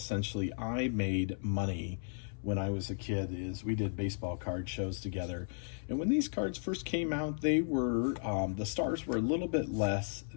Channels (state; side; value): silent; right; 55 dB below the other